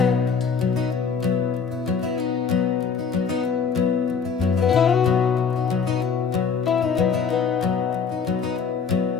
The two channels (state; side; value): quieter; right; 5.9 dB